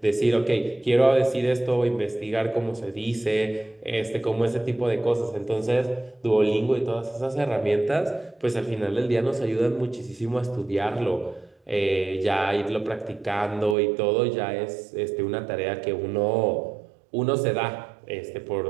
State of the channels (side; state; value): left; drops out; at 13.8 s